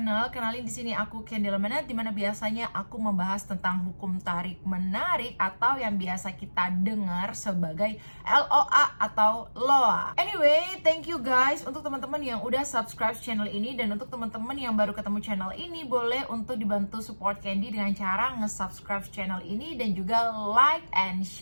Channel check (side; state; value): both; inverted; correlation -1.00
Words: Kenalin, di sini aku Kendall Manat, dimana biasanya aku membahas tentang hukum tarik menarik atau yang biasa kita dengar sebagai LOA atau LOA. Anyway, thank you guys untuk teman-teman yang udah subscribe channel ini, dan untuk teman-teman yang baru ketemu channel ini, boleh untuk dibantu support Candy dengan cara nge-subscribe channel ini dan juga like and